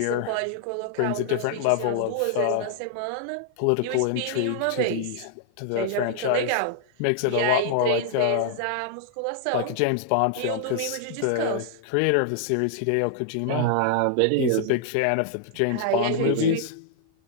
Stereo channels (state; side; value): different; both; correlation -0.01